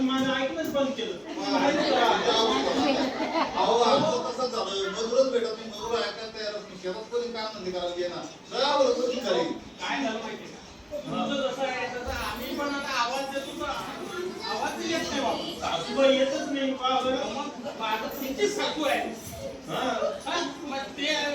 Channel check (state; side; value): identical; both; correlation 1.00